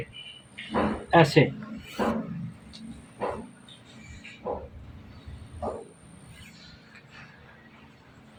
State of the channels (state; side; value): identical; both; correlation 1.00